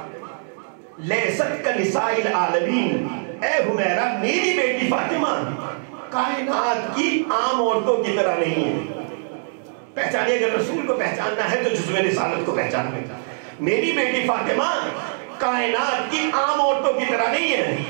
لیست کنساء العالمین، اے حمیرہ میری بیٹی فاطمہ کائنات کی عام عورتوں کی طرح نہیں ہے۔ پہچانیے، اگر رسول کو پہچاننا ہے تو جزو رسالت کو پہچاننا ہے۔ میری بیٹی فاطمہ کائنات کی عام عورتوں کی طرح نہیں ہے۔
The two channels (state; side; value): silent; left; digital silence